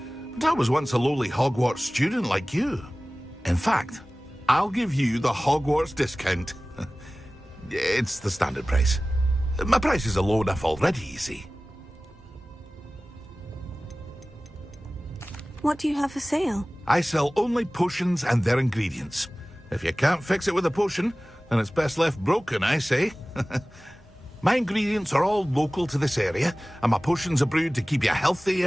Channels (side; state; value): both; normal; correlation 0.97